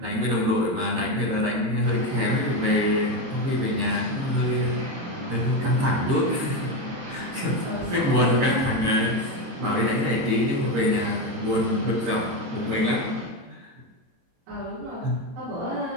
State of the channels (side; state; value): left; late; 23 ms